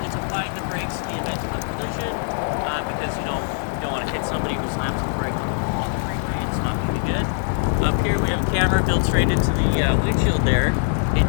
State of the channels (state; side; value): silent; right; digital silence